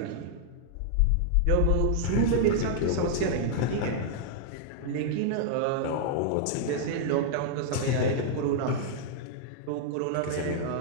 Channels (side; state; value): both; different; correlation -0.01